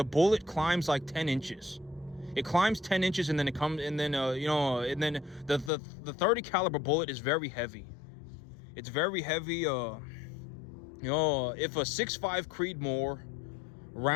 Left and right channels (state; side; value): drops out; right; at 5.7 s